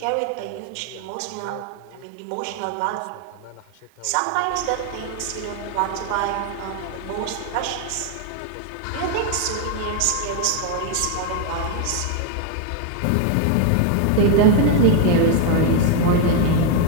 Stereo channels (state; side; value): different; both; correlation 0.01